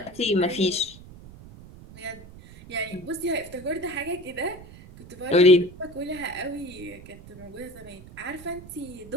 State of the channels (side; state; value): right; noise; rumble, 18 dB below the sound